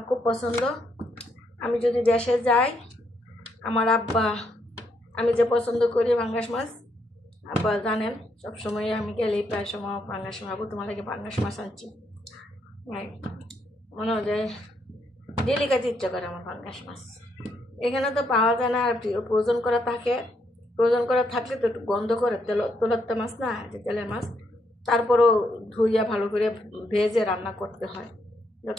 খুব পছন্দ। আমি যদি দেশে যাই, আমার আব্বা, আমি যে পছন্দ করি পাঙ্গাস মাছ, আব্বা জানেন সবসময় আমি গেলেই প্রায় সময় পাঙ্গাস মাছ, তোমার লাগে পাঙ্গাস মাছ আনছি। মনে হয় যে ডেলি খাইতে ইচ্ছা করে আমার পাঙ্গাস মাছ। এখানে তো পাওয়া যায় না, আর প্রয়োজন করা থাকে। প্রয়োজন করা থাকলে তো একটু গন্ধ করে, তেলের মাছ না, যে তেলের মাছ, তারপরেও ধুইয়া ভালো করে ভেজে রান্না করতে হয়।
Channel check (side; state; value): both; normal; correlation 0.76